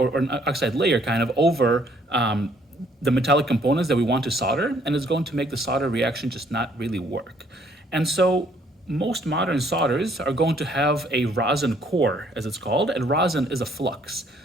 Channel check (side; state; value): both; normal; correlation 0.64